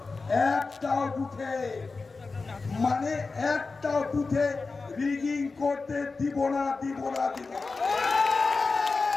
একটাও বুথে মানে একটাও বুথে রিগিং করতে দিব না, দিব না, দিব না।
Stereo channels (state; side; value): quieter; right; 4.1 dB